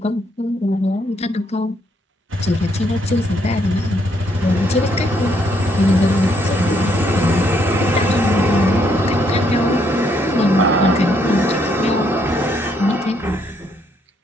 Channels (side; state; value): both; normal; correlation 0.72